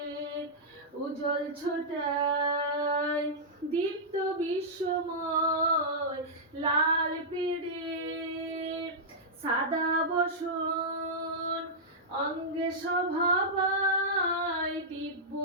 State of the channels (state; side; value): normal; both; correlation -0.11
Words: উজ্জ্বল ছোটায় দীপ্ত বিশ্বময় লাল পেড়ে সাদা বসন অঙ্গে শোভা পায় দিব্য